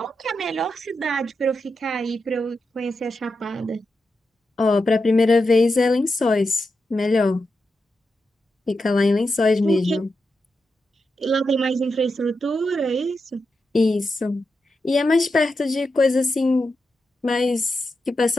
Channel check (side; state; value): both; normal; correlation 0.87